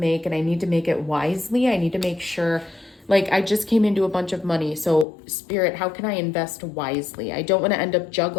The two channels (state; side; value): drops out; right; at 5.1 s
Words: and I need to make it wisely. I need to make sure, like, I just came into a bunch of money. So Spirit, how can I invest wisely? I don't want to end up